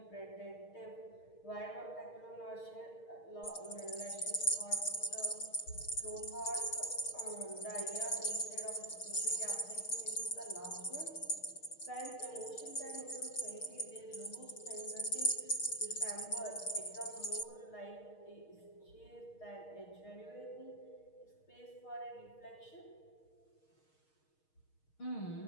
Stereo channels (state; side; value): late; right; 6.4 ms